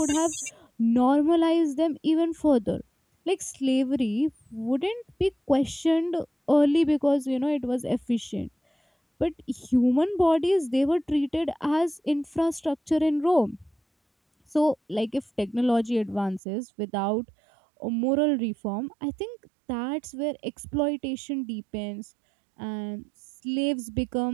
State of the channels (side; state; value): left; drops out; at 16.4 s